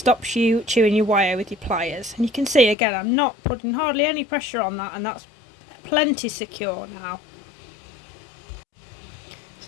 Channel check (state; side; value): drops out; right; at 2.8 s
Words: you chewing your wire with your pliers. And you can see again, I'm not putting hardly any pressure on that, and that's plenty secure now.